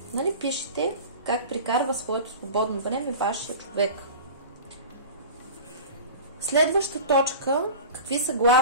Нали, пишете как прикарва своето свободно време вашия човек. Следваща точка. Какви са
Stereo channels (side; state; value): both; inverted; correlation -0.35